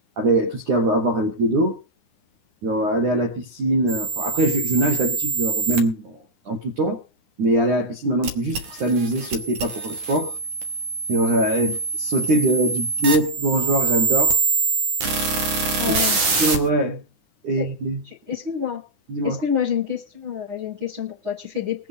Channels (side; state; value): left; late; 9.7 ms